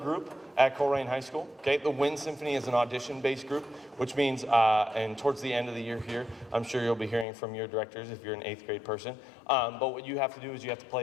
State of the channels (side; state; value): right; drops out; at 7.2 s